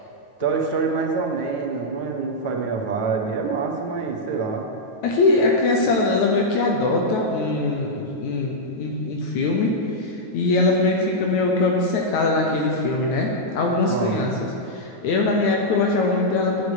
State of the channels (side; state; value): right; late; 9.3 ms